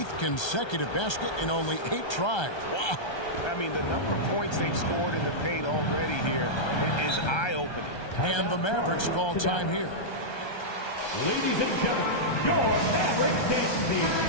consecutive basket in only 8 tries. Wow. I mean, the number of points they've scored in the paint already here is eye-opening. And the Mavericks call time here. Ladies and gentlemen, your Mavericks dance team.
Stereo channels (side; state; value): right; late; 1.3 ms